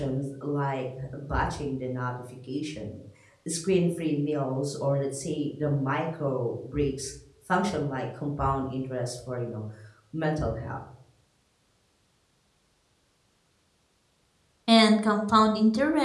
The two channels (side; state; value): both; identical; correlation 1.00